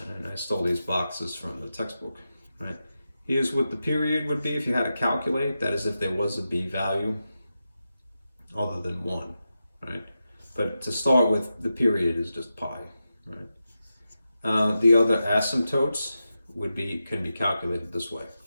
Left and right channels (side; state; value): both; inverted; correlation -0.90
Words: I stole these boxes from the textbook, right? Here's what the period would be if you had to calculate. That is if there was a b value other than 1, right? But to start with, the period is just pi, right? The other asymptotes can be calculated this way,